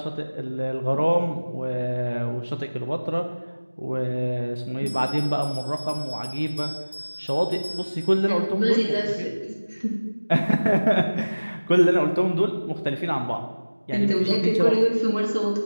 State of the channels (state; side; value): inverted; both; correlation -1.00